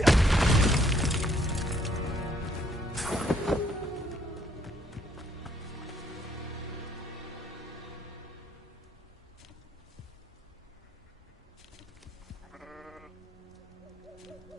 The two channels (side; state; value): both; normal; correlation 0.67